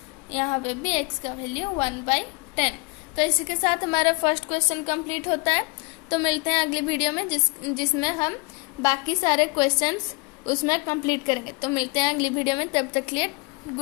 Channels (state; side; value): quieter; right; 28.9 dB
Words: यहाँ पे भी x का वैल्यू 1/10। तो इसी के साथ हमारा फर्स्ट क्वेश्चन कंप्लीट होता है। तो मिलते हैं अगली वीडियो में जिसमें हम बाकी सारे क्वेश्चंस उसमें कंप्लीट करेंगे। तो मिलते हैं अगली वीडियो में, तब तक के लिए